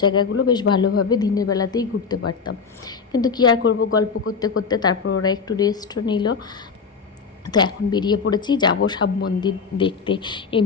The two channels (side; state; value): right; quieter; 5.5 dB